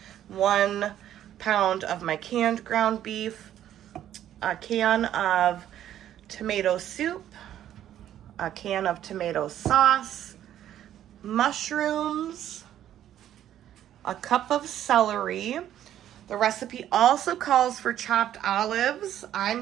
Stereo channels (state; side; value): quieter; left; 11.4 dB